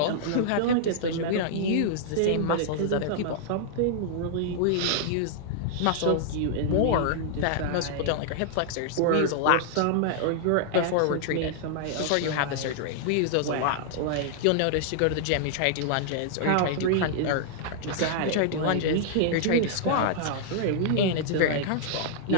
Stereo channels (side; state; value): both; different; correlation -0.01